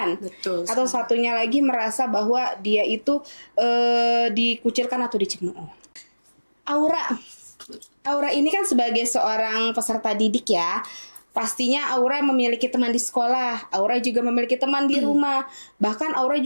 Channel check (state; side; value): inverted; both; correlation -1.00